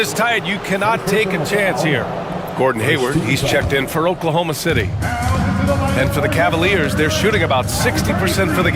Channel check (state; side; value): identical; both; correlation 1.00